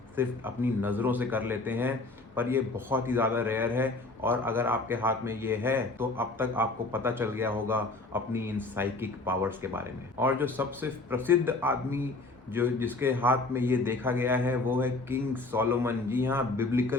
सिर्फ अपनी नज़रों से कर लेते हैं, पर ये बहुत ही ज़्यादा रेयर है। और अगर आपके हाथ में ये है तो अब तक आपको पता चल गया होगा अपनी इन साइकिक पावर्स के बारे में। और जो सबसे प्रसिद्ध आदमी जो जिसके हाथ में ये देखा गया है वो है किंग सोलोमन। जी हाँ,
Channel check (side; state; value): right; quieter; 3.2 dB